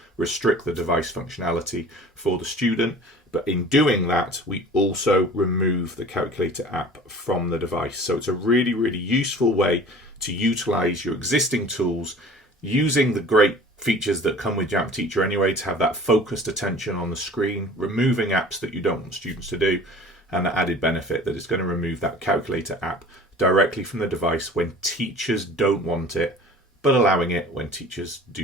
restrict the device functionality for the student. But in doing that, we also remove the Calculator app from the device. So it's a really, really useful way to utilize your existing tools using the great features that come with Jamf Teacher anyway, to have that focused attention on the screen, removing apps that you don't want students to do, and the added benefit that is going to remove that Calculator app directly from the device when teachers don't want it, but allowing it when teachers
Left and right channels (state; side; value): normal; both; correlation 0.44